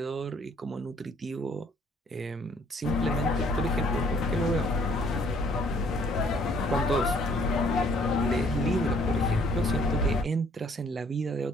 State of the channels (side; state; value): both; normal; correlation 0.61